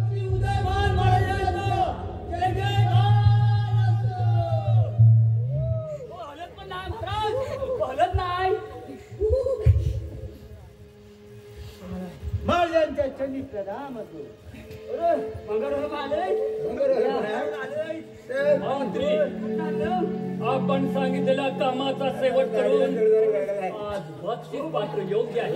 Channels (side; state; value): both; identical; correlation 1.00